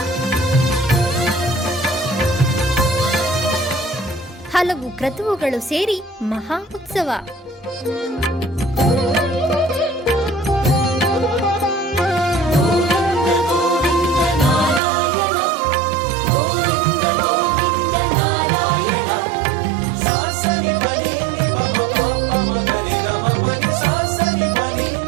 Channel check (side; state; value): left; drops out; at 14.8 s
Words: ಹಲವು ಕ್ರತುವುಗಳು ಸೇರಿ ಮಹಾ ಉತ್ಸವ.